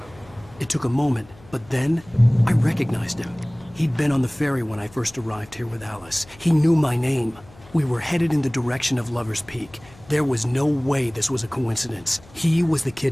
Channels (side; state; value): left; noise; hum, 24 dB below the sound